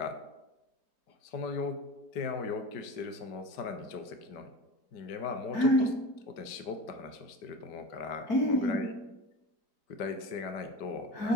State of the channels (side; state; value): right; late; 5.1 ms